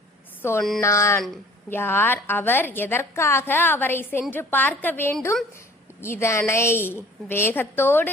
சொன்னான்? யார் அவர்? எதற்காக அவரை சென்று பார்க்க வேண்டும்? இதனை வேகத்தோடு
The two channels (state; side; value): normal; both; correlation 0.50